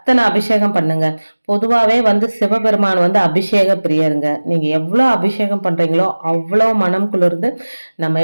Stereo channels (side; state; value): both; inverted; correlation -1.00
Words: அபிஷேகம் பண்ணுங்க. பொதுவாவே வந்து சிவபெருமான் வந்து அபிஷேக பிரியருங்க. நீங்க எவ்வளவு அபிஷேகம் பண்றீங்களோ அவ்வளவு மனம் குளிர்ந்து நம்ம